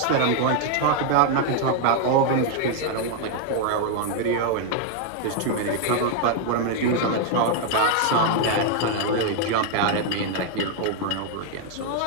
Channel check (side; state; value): both; different; correlation 0.00